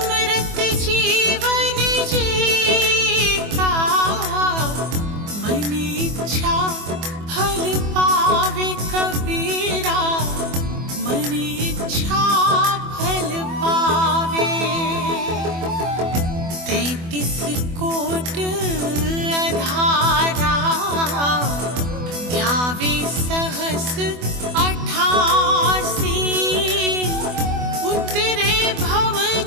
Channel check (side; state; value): left; late; 24 ms